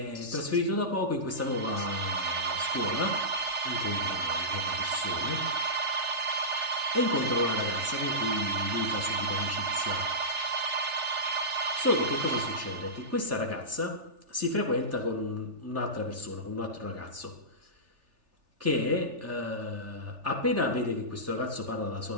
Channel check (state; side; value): late; left; 3.4 ms